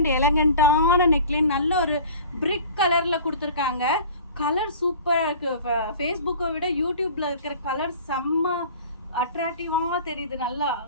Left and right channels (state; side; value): inverted; both; correlation -0.42